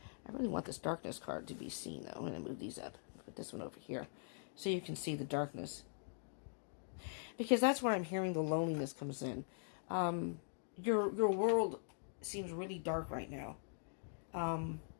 really want this darkness card to be seen, though. I'm going to move these up. Put this one over here so you can see the darkness, because that's where I'm hearing the loneliness comes in. Your world seems really dark right now. drab,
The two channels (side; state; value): right; silent; digital silence